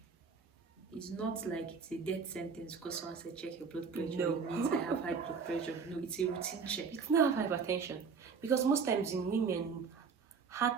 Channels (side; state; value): left; quieter; 5.6 dB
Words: It's not like it's a death sentence because someone said check your blood pressure. No. It means I have high blood pressure. No, it's a routine check. It's not hypertension. Because most times in women,